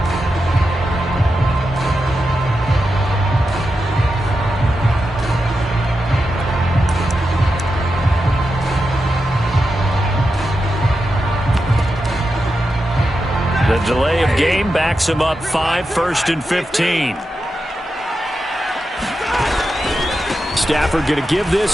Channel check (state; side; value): normal; both; correlation 0.89